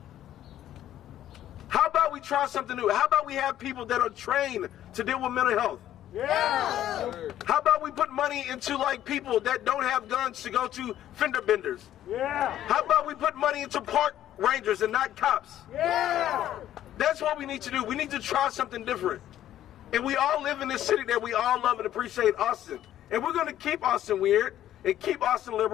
How about we try something new? How about we have people that are trained to deal with mental health? Yeah! How about we put money into like people that don't have guns to go to fender benders? Yeah! How about we put money into park rangers and not cops? Yeah! That's what we need to do. We need to try something different. And we all live in this city that we all love and appreciate, Austin. And we're going to keep Austin weird and keep Austin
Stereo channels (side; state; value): right; quieter; 12.1 dB